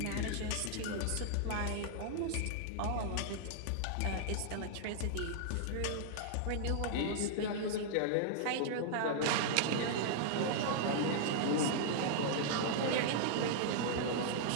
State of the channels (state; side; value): different; both; correlation -0.01